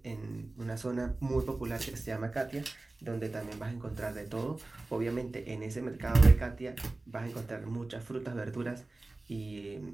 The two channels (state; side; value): quieter; left; 3.1 dB